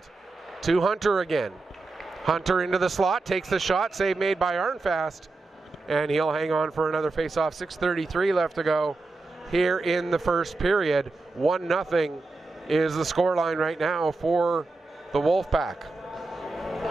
To Hunter again. Hunter into the slot, takes the shot. Save made by Arnfast. And he'll hang on for another face-off. 6:33 left to go here in the first period. 1-0 is the scoreline right now for the Wolfpack.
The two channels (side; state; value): left; quieter; 3.4 dB